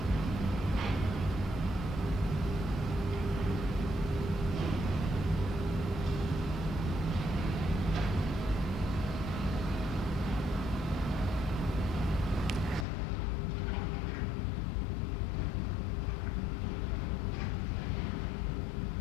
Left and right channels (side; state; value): right; drops out; at 12.9 s